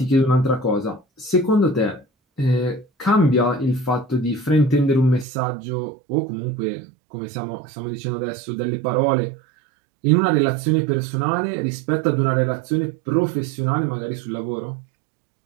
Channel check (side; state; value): left; drops out; at 5.2 s